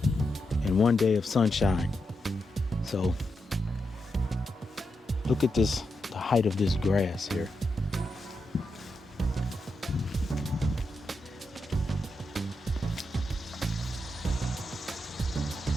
and 1 day of sunshine. So look at this, the height of this grass here.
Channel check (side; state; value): both; normal; correlation 0.86